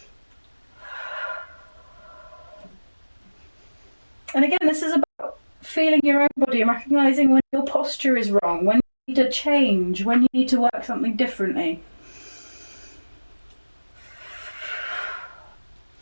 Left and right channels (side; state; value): both; inverted; correlation -1.00